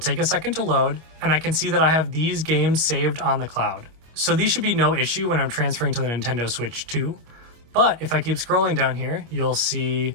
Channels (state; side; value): late; left; 25 ms